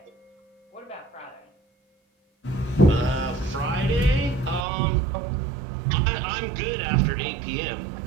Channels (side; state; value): left; drops out; at 4.7 s